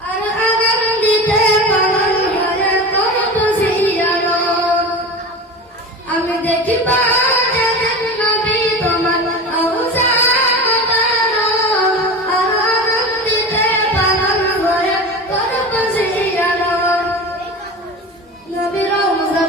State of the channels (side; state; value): both; normal; correlation 0.30